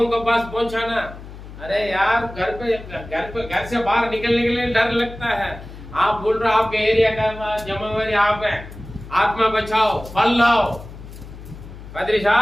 को पास पहुंचाना। अरे यार, घर से बाहर निकलने के लिए डर लगता है। आप बोल रहे आपके एरिया का जिम्मेवारी आप है, आत्मा बचाओ, फल लाओ। पादरी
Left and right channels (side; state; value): left; noise; hum, 15 dB below the sound